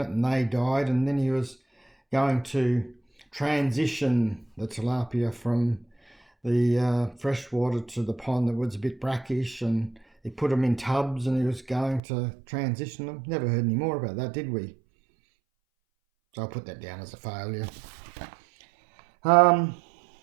and they died, and then he was going to transition the tilapia from the freshwater to the pond that was a bit brackish, and he put them in tubs and he was going to transition them. Never heard any more about that, did we? So I'll put that down as a failure. Well,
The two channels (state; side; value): drops out; left; at 12.0 s